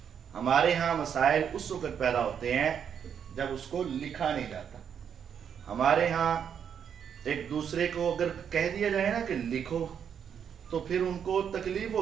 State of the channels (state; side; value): quieter; left; 8.0 dB